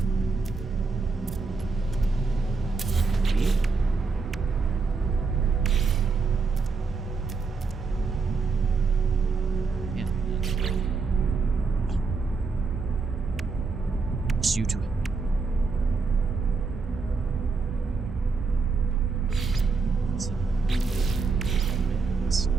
Just you to it.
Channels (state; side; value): quieter; left; 4.5 dB